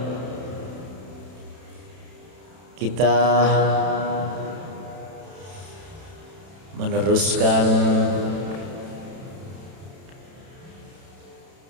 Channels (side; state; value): left; late; 31 ms